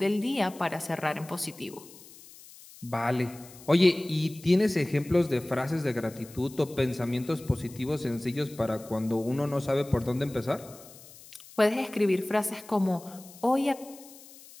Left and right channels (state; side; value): noise; left; hiss, 20 dB below the sound